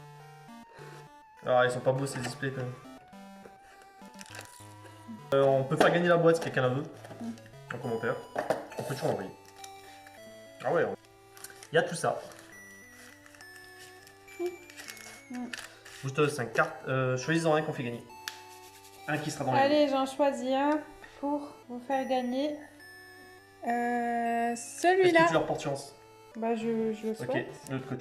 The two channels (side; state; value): both; identical; correlation 1.00